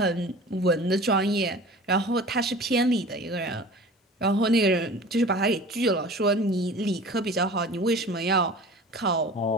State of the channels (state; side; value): normal; both; correlation 0.41